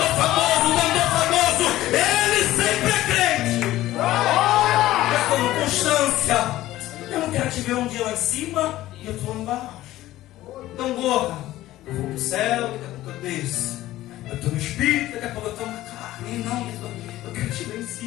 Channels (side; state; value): right; quieter; 15.4 dB